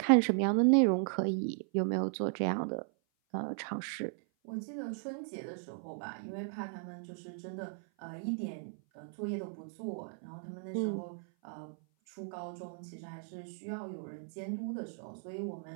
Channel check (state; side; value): silent; left; 54 dB below the other